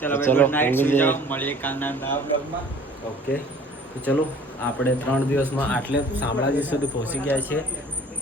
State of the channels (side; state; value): both; normal; correlation 0.50